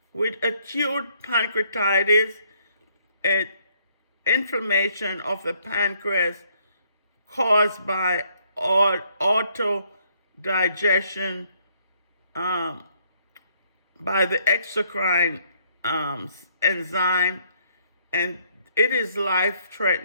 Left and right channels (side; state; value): both; inverted; correlation -0.68